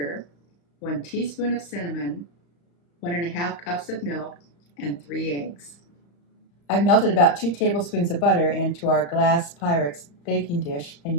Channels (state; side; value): late; right; 35 ms